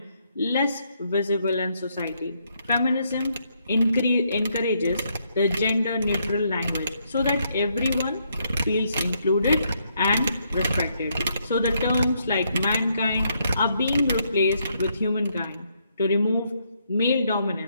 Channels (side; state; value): both; inverted; correlation -0.75